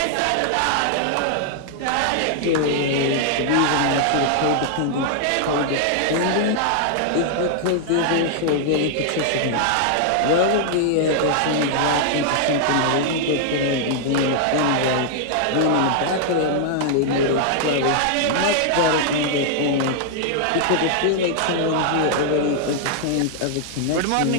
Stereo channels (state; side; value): different; both; correlation 0.00